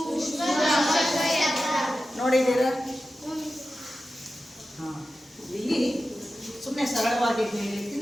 ಯಂತ್ರ. ನೋಡಿದ್ದೀರಾ? ಇಲ್ಲಿ ಸುಮ್ಮನೆ ಸರಳವಾಗಿ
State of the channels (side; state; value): both; normal; correlation 0.93